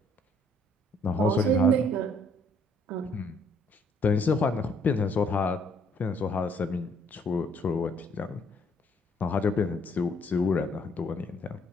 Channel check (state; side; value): normal; both; correlation 0.64